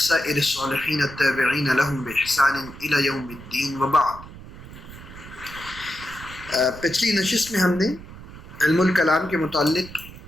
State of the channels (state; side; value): noise; right; rumble, 16 dB below the sound